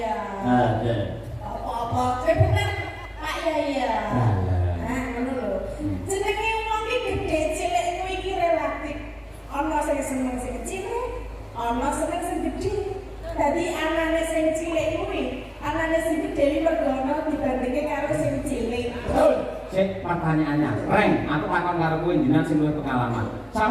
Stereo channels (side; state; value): both; identical; correlation 1.00